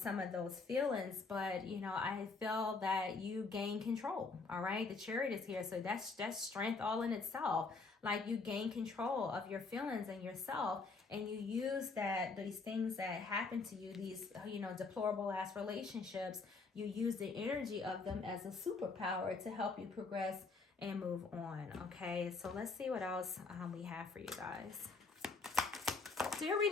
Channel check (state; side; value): quieter; right; 4.1 dB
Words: of those feelings. But, I feel that you gain control. All right. The Chariot is here. So that's strength all in itself. Like, you gain control of your feelings and yourself, and you use these things that happen to you, these, deplorable ass relationships, you use the energy of them as a superpower to help you progress and move on. Okay, so let's see what else we have for you guys. So your